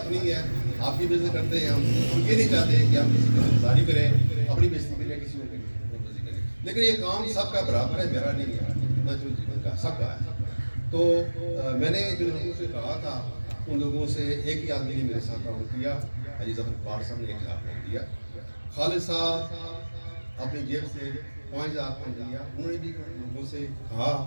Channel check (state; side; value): inverted; both; correlation -1.00